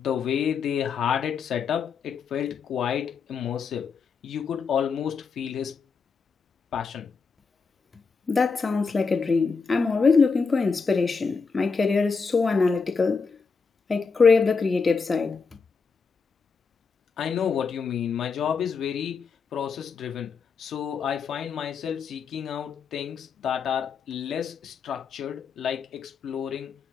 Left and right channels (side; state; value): right; quieter; 5.2 dB